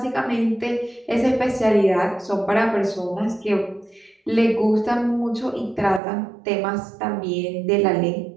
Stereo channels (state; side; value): drops out; left; at 6.0 s